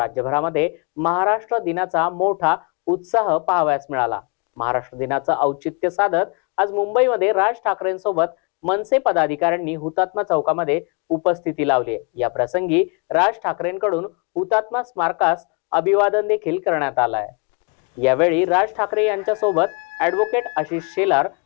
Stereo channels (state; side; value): quieter; right; 34.4 dB